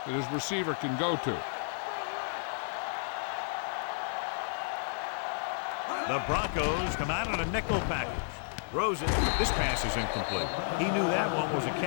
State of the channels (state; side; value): silent; right; digital silence